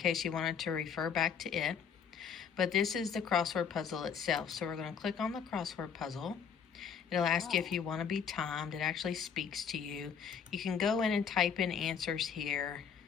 you wanted to refer back to it. But this is the crossword puzzle itself. So we're going to click on the crossword puzzle. It'll ask you if you want to be timed. It actually speaks to you. You can go in and type in answers here.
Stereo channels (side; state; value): right; quieter; 7.0 dB